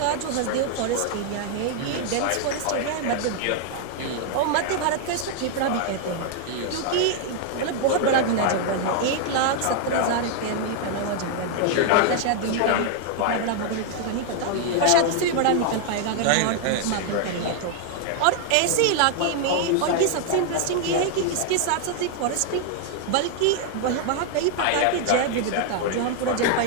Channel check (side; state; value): both; different; correlation 0.00